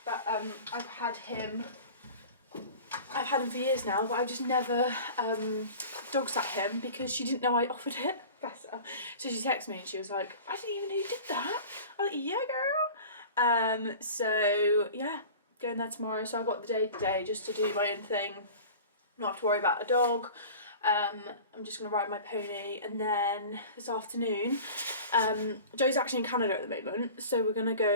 but I've had him for years now, but I've just never dog sat him because she didn't know I offered it. Bless her. So she texted me and she was like, I didn't even know you did that. I was like, yeah, girl. So yeah, going there tomorrow. So I've got the day today just to do my own thing, not have to worry about a dog. I'm just going to ride my pony, and then this afternoon, Joe's actually in Canada at the moment, so we're going to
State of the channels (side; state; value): both; inverted; correlation -0.39